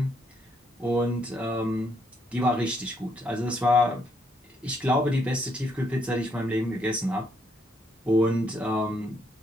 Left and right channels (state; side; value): normal; both; correlation 0.73